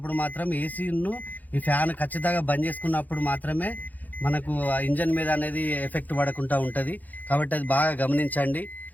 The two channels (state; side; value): late; right; 0.081 ms